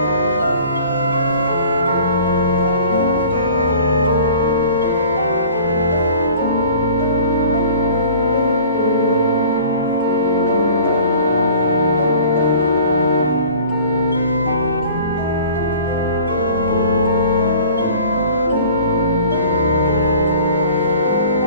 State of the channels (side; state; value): both; inverted; correlation -0.48